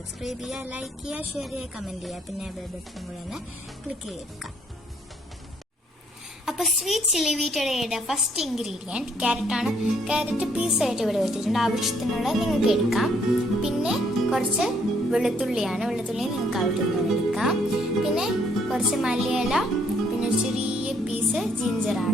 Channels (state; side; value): normal; both; correlation 0.68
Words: ചെയ്യുക, ലൈക്ക് ചെയ്യുക, ഷെയർ ചെയ്യുക, കമൻറ്റ് ചെയ്യുക, പിന്നെ ബെൽ ബട്ടൺ കൂടെ ഒന്ന് ക്ലിക്ക് ചെയ്തെടുക്കാം. അപ്പോൾ സ്വീറ്റ് ചില്ലി വീറ്റ് അടയുടെ ഫസ്റ്റ് ഇൻഗ്രീഡിയൻറ്റ് ക്യാരറ്റാണ്. ക്യാരറ്റ് പീസായിട്ട് ഇവിടെ വെച്ചിട്ടുണ്ട്. ആവശ്യത്തിനുള്ള നിങ്ങൾക്ക് എടുക്കാം. പിന്നെ കുറച്ച് വെളുത്തുള്ളിയാണ്. വെളുത്തുള്ളി നിങ്ങൾക്ക് ആവശ്യത്തിന് എടുക്കാം. പിന്നെ കുറച്ച് മല്ലിയില, പിന്നെ ചെറിയ പീസ്